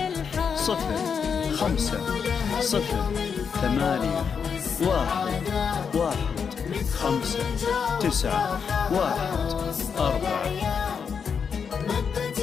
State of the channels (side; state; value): right; quieter; 6.4 dB